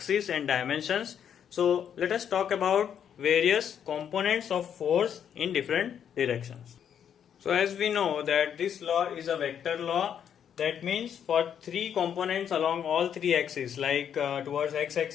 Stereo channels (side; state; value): right; quieter; 8.6 dB